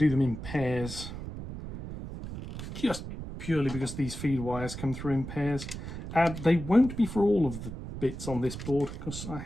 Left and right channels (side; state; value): right; noise; rumble, 9 dB below the sound